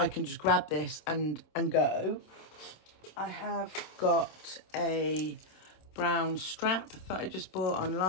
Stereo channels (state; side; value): late; right; 26 ms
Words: can just grab this and go. I have got a brown strap that I just bought